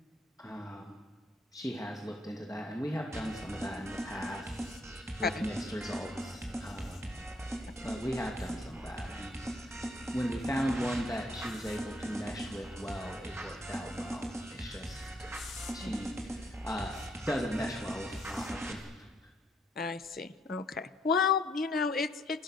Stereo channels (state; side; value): normal; both; correlation 0.70